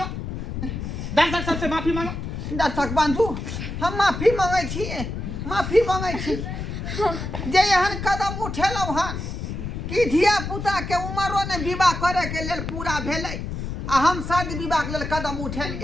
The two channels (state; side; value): noise; left; rumble, 5 dB below the sound